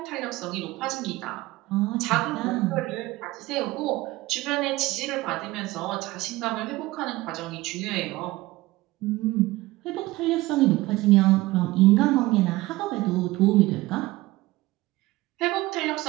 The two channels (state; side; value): quieter; left; 19.0 dB